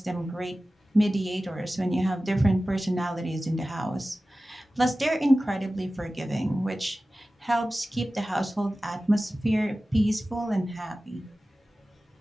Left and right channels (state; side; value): normal; both; correlation 0.96